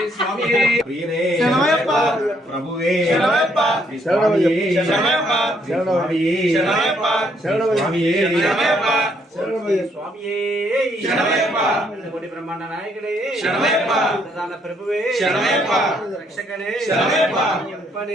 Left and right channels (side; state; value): both; normal; correlation 0.70